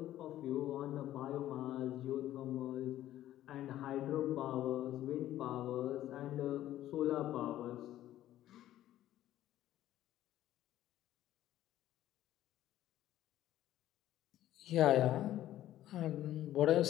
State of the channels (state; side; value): quieter; right; 13.3 dB